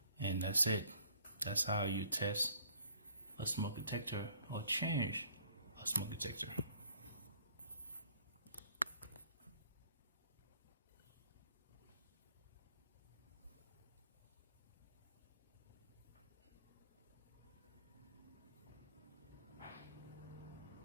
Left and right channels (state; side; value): inverted; both; correlation -0.58